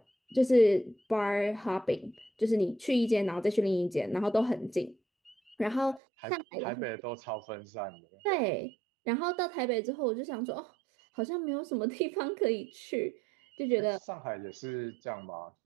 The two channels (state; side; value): drops out; left; at 6.0 s